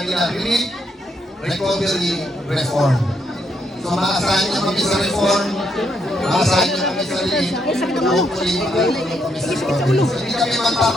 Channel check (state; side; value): normal; both; correlation 0.76